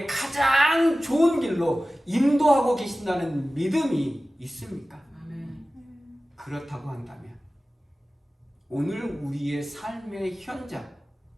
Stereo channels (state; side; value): normal; both; correlation 0.96